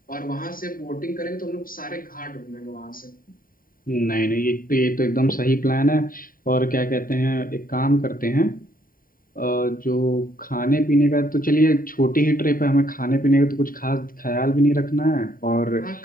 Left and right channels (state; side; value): late; right; 0.41 ms